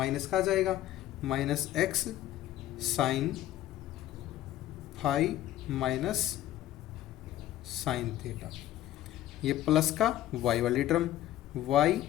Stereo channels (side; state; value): right; quieter; 13.4 dB